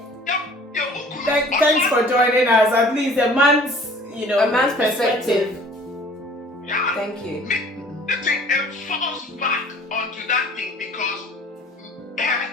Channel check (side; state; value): both; normal; correlation 0.50